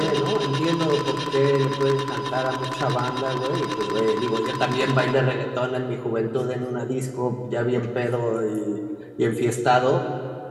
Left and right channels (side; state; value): both; identical; correlation 1.00